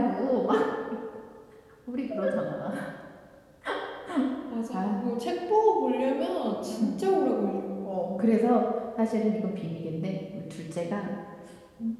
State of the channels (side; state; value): both; identical; correlation 1.00